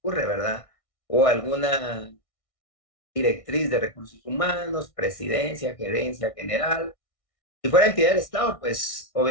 ¿verdad? O alguna directriz de recursos humanos, presidencia, gerencia general. Si fuera entidad del Estado, pues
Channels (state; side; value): late; right; 1.6 ms